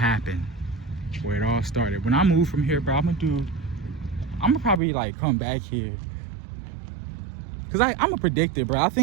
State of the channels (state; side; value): drops out; left; at 4.8 s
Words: where it all started. When I move from here, bro, I'm gonna probably like come back here, cause I'm a predictor, bro. I